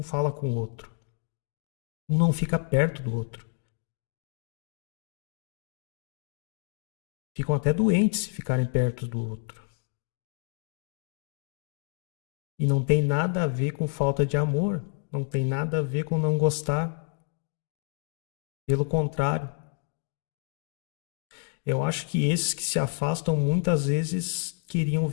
fala com o outro. Um não fica perto do outro. Ficam até doentes se ficarem perto do outro. E não tem nada a ver com falta de amor. Não tem nada a ver com não gostar. Pelo contrário. Eu acho que esses que se afastam muitas vezes queriam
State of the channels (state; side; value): silent; right; 59 dB below the other